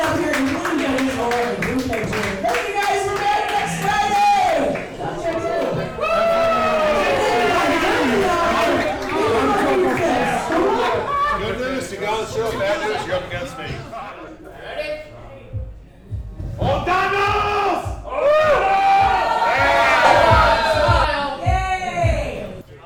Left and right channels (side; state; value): both; identical; correlation 1.00